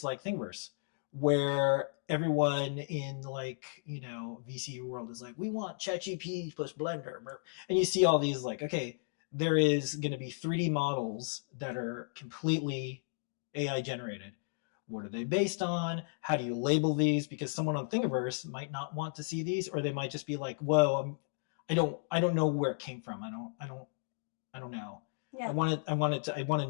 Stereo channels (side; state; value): right; silent; digital silence